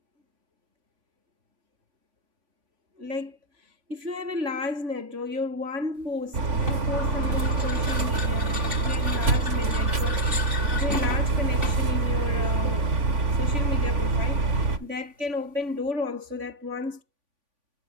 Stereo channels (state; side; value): late; left; 3.5 ms